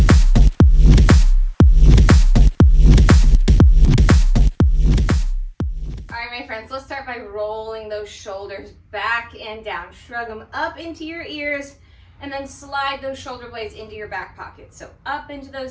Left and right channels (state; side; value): identical; both; correlation 1.00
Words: My friends, let's start by rolling those shoulders back and down. Shrug them up into your ears and then slide those shoulder blades into your back pocket. So up into